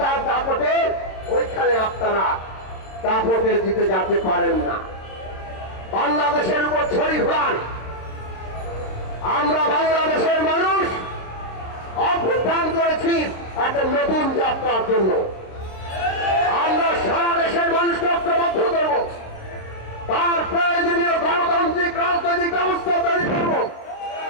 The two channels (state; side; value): late; right; 26 ms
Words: দাপটে ওইখানে আপনারা দাপটে জিতে যেতে পারেন না। বাংলাদেশের উপর ছড়ি ঘোরান। আমরা বাংলাদেশের মানুষ অভ্যুত্থান করেছি একটা নতুন যাত্রার জন্য। আমরা সারা দেশের মানুষকে ঐক্যবদ্ধ করব, তার প্রয়োজনীয় গণতান্ত্রিক রাজনৈতিক ব্যবস্থা তৈরি করব।